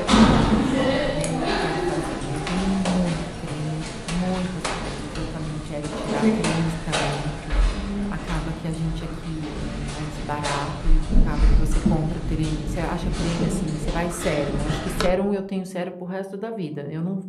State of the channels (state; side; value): identical; both; correlation 1.00